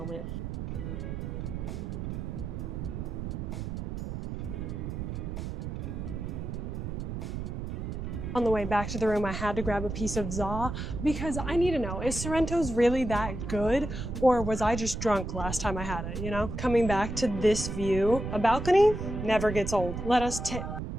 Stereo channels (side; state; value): right; noise; rumble, 5 dB below the sound